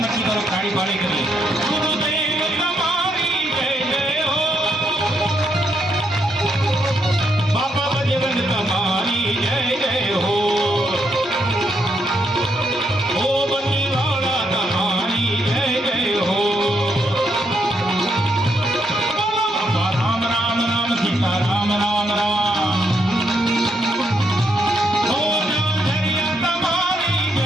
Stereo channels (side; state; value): both; normal; correlation 0.77